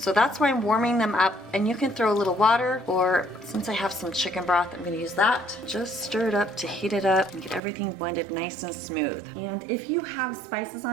that's why I'm warming them up, and you can throw a little water, or since I have some chicken broth, I'm gonna use that. Just stir it up to heat it up and get everything blended nice and smooth. And if you have spices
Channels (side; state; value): left; drops out; at 7.6 s